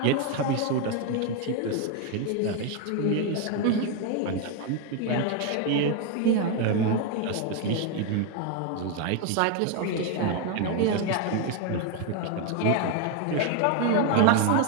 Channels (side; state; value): both; different; correlation 0.01